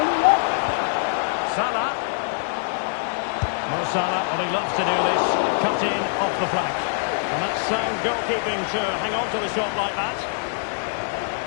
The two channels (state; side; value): silent; right; digital silence